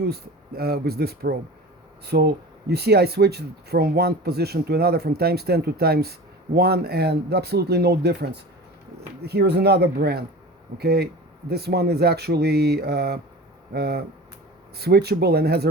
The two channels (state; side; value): normal; both; correlation 0.35